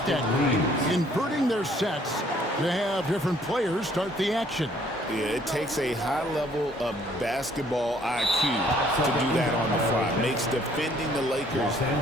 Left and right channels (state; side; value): normal; both; correlation 0.61